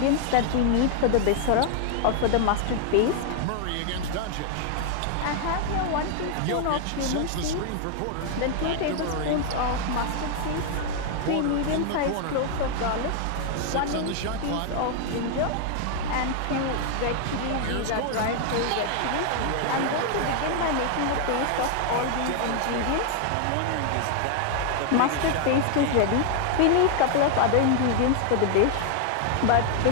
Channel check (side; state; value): both; different; correlation 0.00